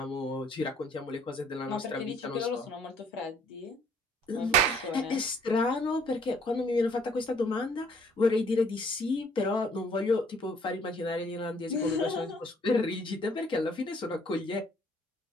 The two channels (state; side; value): normal; both; correlation 0.62